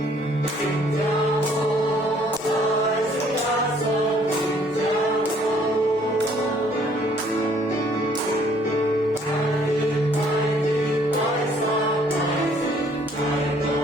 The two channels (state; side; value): normal; both; correlation 0.61